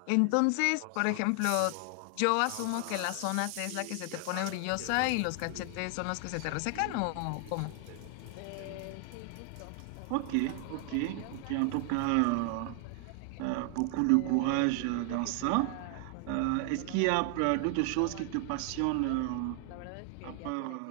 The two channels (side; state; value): both; different; correlation 0.00